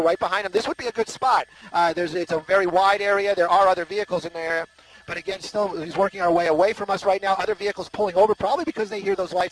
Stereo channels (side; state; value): both; identical; correlation 1.00